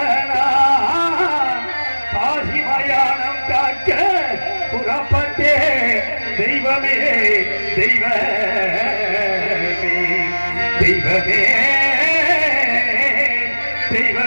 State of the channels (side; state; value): both; inverted; correlation -1.00